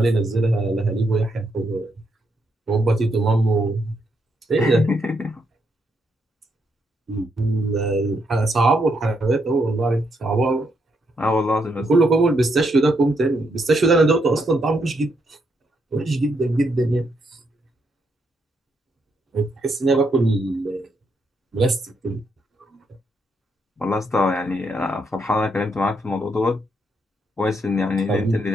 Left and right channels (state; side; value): normal; both; correlation 0.78